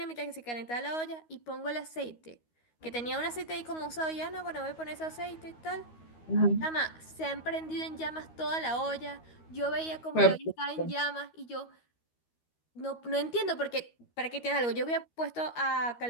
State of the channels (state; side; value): late; right; 13 ms